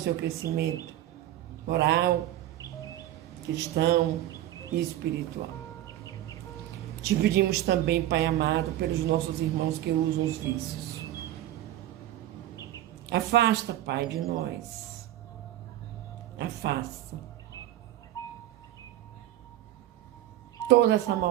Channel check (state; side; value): quieter; left; 13.7 dB